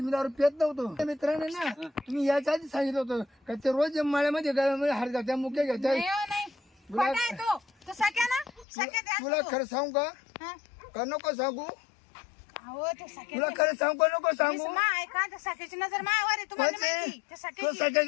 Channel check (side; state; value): right; drops out; at 8.7 s